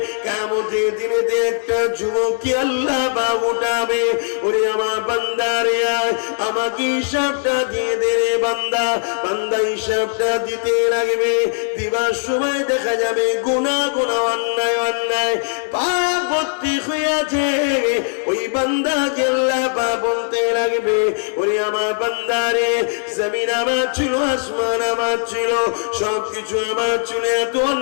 কিয়ামতের দিনে একটা যুবককে আল্লাহ বাগ উঠাবে। ওরে আমার বান্দারে, আমাকে হিসাবটা দিয়ে দে রে বান্দা। বান্দা হিসাবটা দিতে লাগবে। দিবার সময় দেখা যাবে গুনাহ গুনাহ, অন্যায় অন্যায়, পাপ ভর্তি হয়ে আছে। ওই বান্দাকে আল্লাহ বাগ বলতে লাগবে, ওরে আমার বান্দারে, জমিন আমার ছিল, আসমান আমার ছিল, সবকিছু আমার ছিল, এত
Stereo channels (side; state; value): right; silent; digital silence